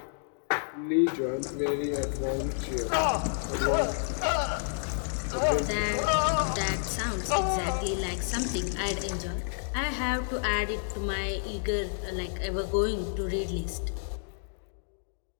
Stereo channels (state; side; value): silent; right; digital silence